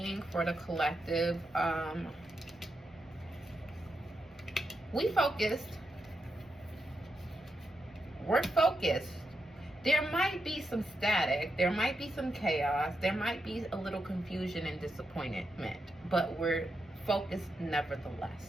for the collective, we're focused. There might be some static, there might be some chaos, there might be a little confusion and disappointment, but we're focused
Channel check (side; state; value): right; noise; rumble, 28 dB below the sound